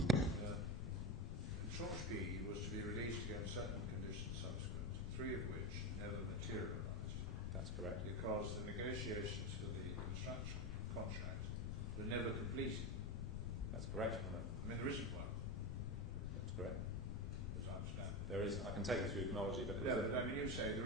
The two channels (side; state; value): left; noise; rumble, 3 dB below the sound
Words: that Tranche B was to be released against certain conditions subsequent, 3 of which never materialised. That's correct. Because the negotiations for the construction contract were never completed. That's correct. I mean, there isn't one. That's correct. As I understand it. There is. I can take you through chronology, but but I mean, you say there